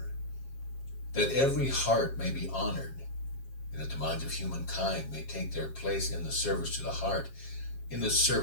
that every heart may be honored, and that the minds of humankind may take their place in the service to the heart, in the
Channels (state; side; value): late; right; 7.4 ms